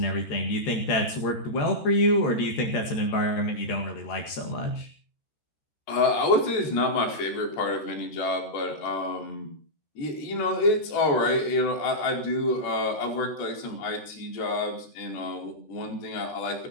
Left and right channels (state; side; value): late; right; 13 ms